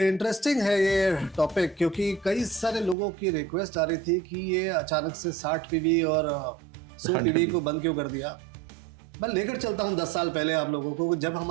इंटरेस्टिंग है ये टॉपिक क्योंकि कई सारे लोगों की रिक्वेस्ट आ रही थी कि ये अचानक से 60 पीवी और 100 पीवी को बंद क्यों कर दिया। मैं लेकर चलता हूँ 10 साल पहले आप लोगों को, जब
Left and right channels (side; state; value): left; drops out; at 3.0 s